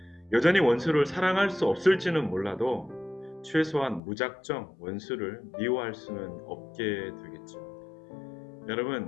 여전히 원수를 사랑할 수 없을지는 몰라도 최소한 무작정 원수를 미워할 수는 없게 되겠죠. 여러분,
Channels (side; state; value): right; drops out; at 4.0 s